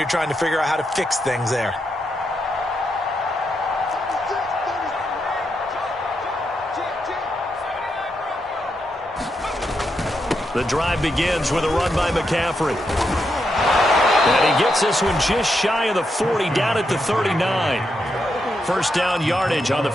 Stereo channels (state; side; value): normal; both; correlation 0.83